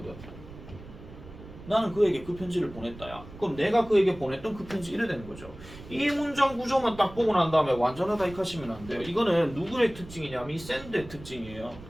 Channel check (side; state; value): right; noise; rumble, 16 dB below the sound